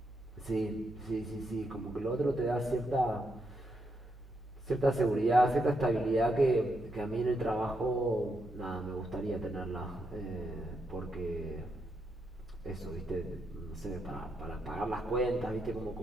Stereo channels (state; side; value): normal; both; correlation 0.81